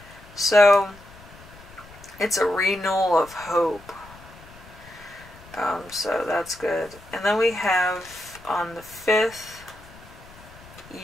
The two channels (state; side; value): noise; left; rumble, 21 dB below the sound